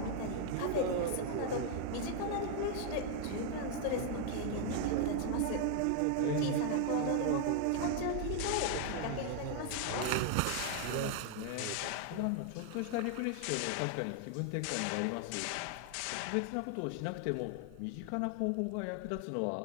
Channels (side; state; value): both; different; correlation 0.00